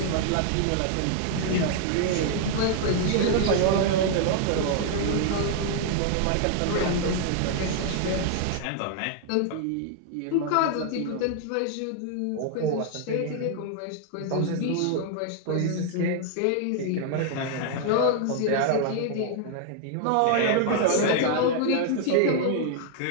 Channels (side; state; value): both; different; correlation 0.00